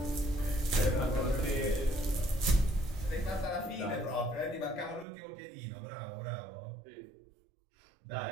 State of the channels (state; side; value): drops out; left; at 5.1 s